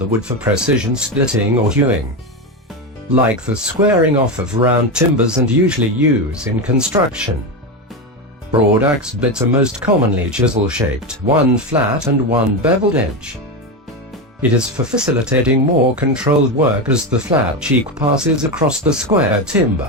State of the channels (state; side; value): normal; both; correlation 0.14